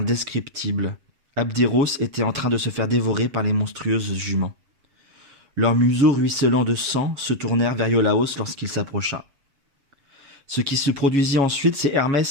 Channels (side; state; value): left; late; 7.4 ms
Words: Abderos était en train de se faire dévorer par les monstrueuses juments. Leurs museaux ruisselants de sang se tournèrent vers Iolaos lorsqu'il s'approcha. Ce qui se produisit ensuite, c'est